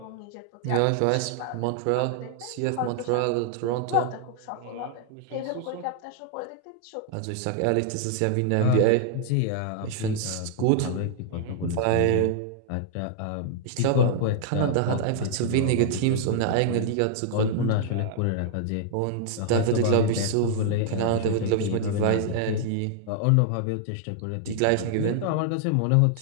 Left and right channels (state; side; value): different; both; correlation -0.01